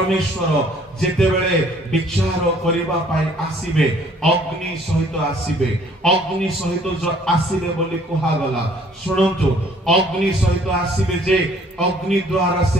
ଯେତେବେଳେ ବିଚାର କରିବା ପାଇଁ ଆସିବେ, ଅଗ୍ନି ସହିତ ଆସିବେ। ଅଗ୍ନି ସହିତ ଆସିବେ ବୋଲି କୁହାଗଲା। ଶୁଣନ୍ତୁ, ଅଗ୍ନି ସହିତ ଆସିବେ ଯେ ଅଗ୍ନି ଦ୍ୱାରା ସେ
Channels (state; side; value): normal; both; correlation 0.58